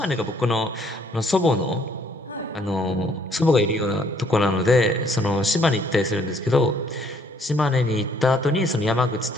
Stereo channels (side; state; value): both; normal; correlation 0.64